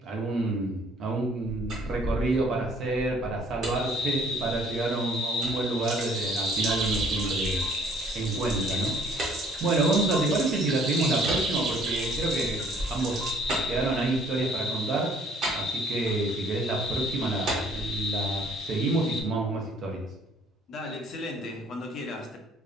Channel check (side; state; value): both; normal; correlation 0.58